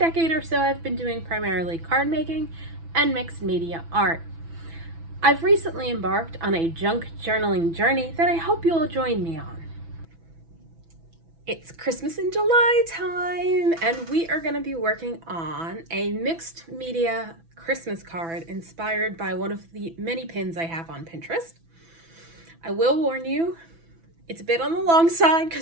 or so I've been doing primarily card making and mixed media art. I've recently embarked on a junk journaling journey that I hope you'll join me on. It's Christmas in July time, and we are going to be working on a mixed media Christmas card inspired by one of the many pins I have on Pinterest. I will warn you, it's a bit on the long side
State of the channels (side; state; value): left; late; 6.0 ms